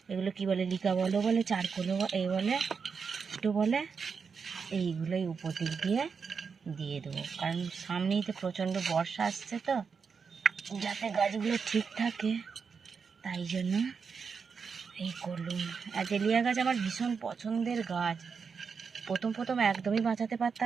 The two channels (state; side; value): quieter; left; 5.7 dB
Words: এগুলো কি বলে, লিকা বলে চারকোলো এই বলে একটু বলে, এইগুলোই উপর দিক দিয়ে দেবো। কারণ সামনেই তো প্রচণ্ড বর্ষা আসছে, তো যাতে গাছগুলো ঠিক থাকে তাই জন্য এই করলুম। অ্যাজেলিয়া গাছ আমার ভীষণ পছন্দের গাছ। প্রথম একদমই বাঁচাতে